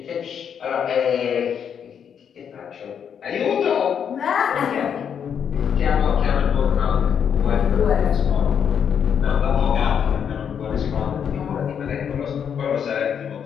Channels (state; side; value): quieter; right; 7.9 dB